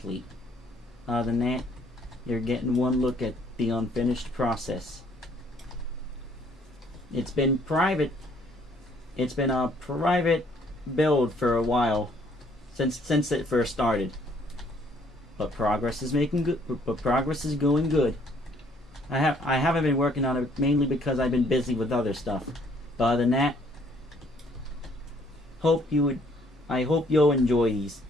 Other than that, you're getting one look at the unfinished process. It's been private. It's been a private build for a while since it first started. But progress is making good. But progress is going good. I haven't been working on it mainly because I've been busy with other stuff. But other than that, I hope you'll enjoy these.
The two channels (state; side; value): normal; both; correlation 0.63